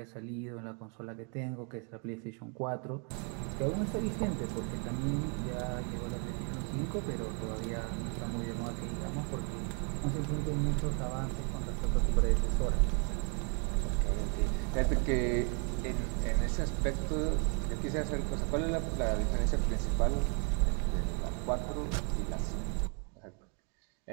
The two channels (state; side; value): quieter; left; 38.1 dB